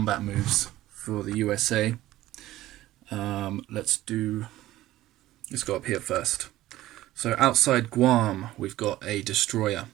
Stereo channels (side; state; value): left; quieter; 15.5 dB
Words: moves for the USA. Let's go up here first. So outside Guam, we've got a destroyer